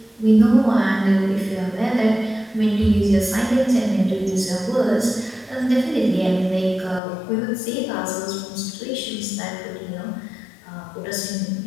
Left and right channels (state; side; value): drops out; right; at 7.0 s